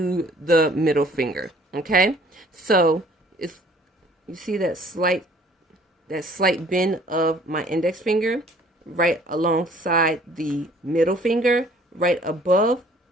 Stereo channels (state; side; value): normal; both; correlation 0.56